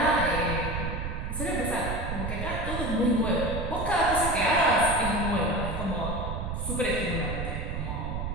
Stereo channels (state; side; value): noise; right; rumble, 4 dB below the sound